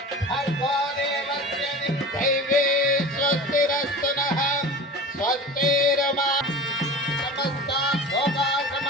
స్వస్తిరస్తునః స్వస్తిరమా సమస్త భోగా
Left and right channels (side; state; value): both; normal; correlation 0.35